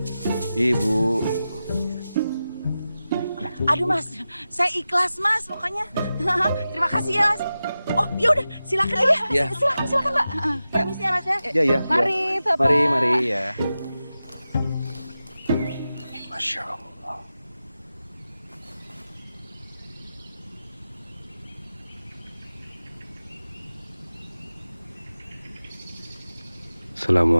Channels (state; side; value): inverted; both; correlation -0.93